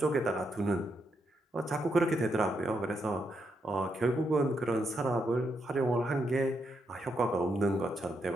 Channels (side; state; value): both; normal; correlation 0.80